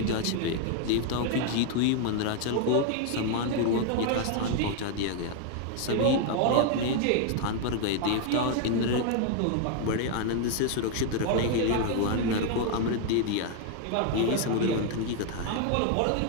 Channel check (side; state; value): both; different; correlation 0.00